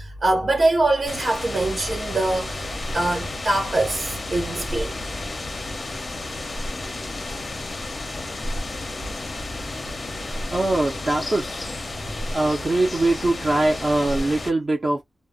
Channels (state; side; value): normal; both; correlation 0.94